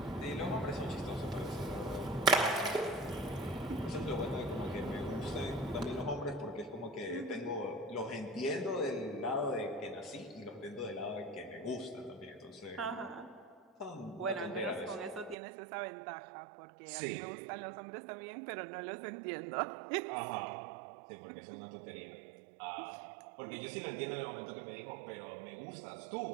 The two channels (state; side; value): drops out; left; at 15.4 s